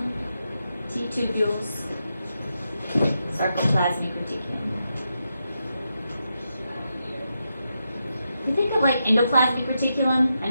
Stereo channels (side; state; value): both; inverted; correlation -0.86